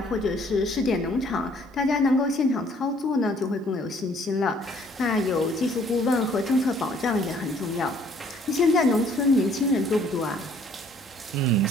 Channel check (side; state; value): both; normal; correlation 0.61